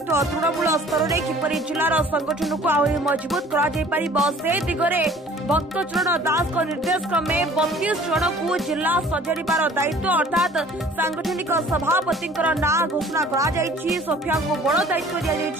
तृणमूल स्तर में किपर जिलार संगठन को आहरी मजबूत कर दिगरे भक्तचरण दास निर्देश क्रमे 32 जन को जिला सजाड़ार दायित्व अर्थात सांगठनिक सभापति ना घोषणा कर सोफिया को बड़ दायित्व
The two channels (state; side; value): normal; both; correlation 0.51